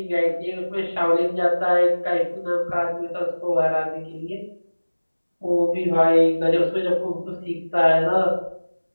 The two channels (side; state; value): both; inverted; correlation -1.00